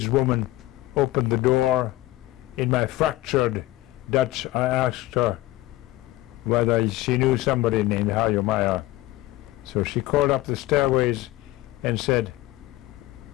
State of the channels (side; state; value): right; quieter; 17.6 dB